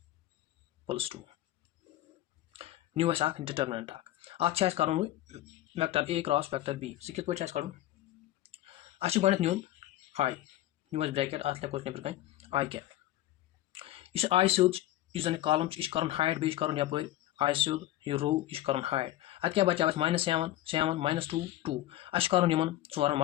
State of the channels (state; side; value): quieter; right; 14.7 dB